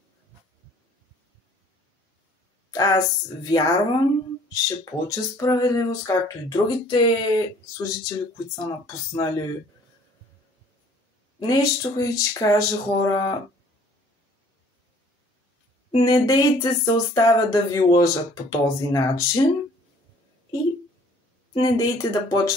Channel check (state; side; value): normal; both; correlation 0.55